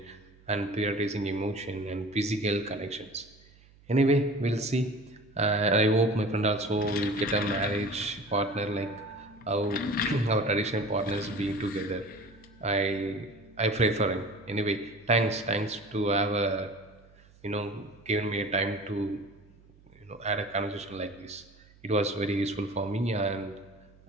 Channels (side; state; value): right; noise; hum, 27 dB below the sound